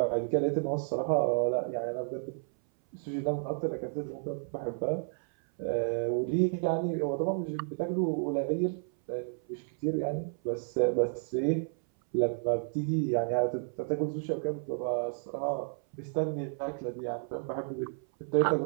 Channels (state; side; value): silent; left; 57 dB below the other